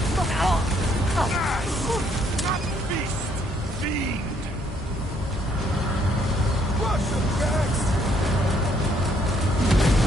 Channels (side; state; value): both; normal; correlation 0.68